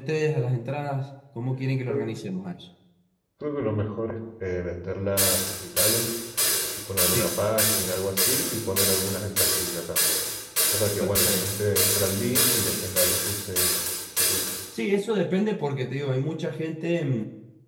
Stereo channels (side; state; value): both; identical; correlation 1.00